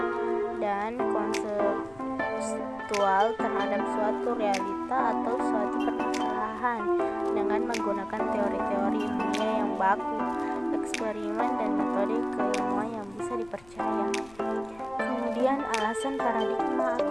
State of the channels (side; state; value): left; noise; rumble, 24 dB below the sound